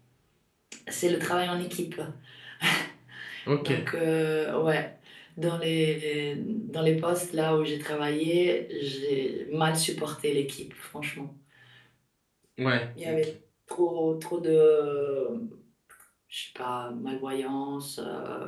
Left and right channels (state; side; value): identical; both; correlation 1.00